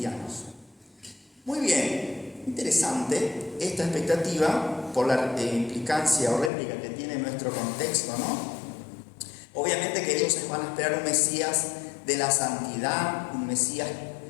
Muy bien, interesante esta expectativa por la implicancia o réplica que tiene nuestro contexto, ¿no? Obviamente que ellos van a esperar un Mesías de la santidad, un Mesías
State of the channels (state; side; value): drops out; right; at 6.5 s